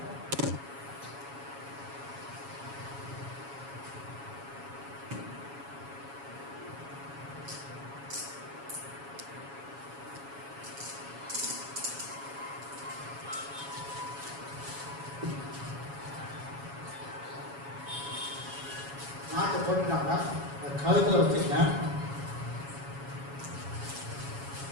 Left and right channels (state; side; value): late; left; 7.2 ms